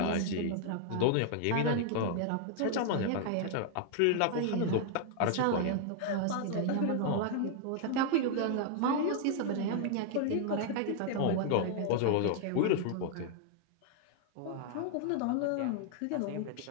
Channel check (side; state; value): both; different; correlation 0.00